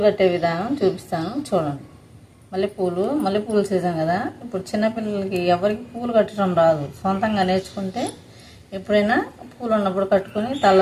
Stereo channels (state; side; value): identical; both; correlation 1.00